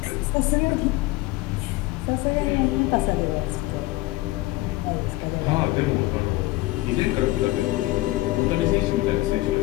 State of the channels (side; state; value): right; quieter; 19.3 dB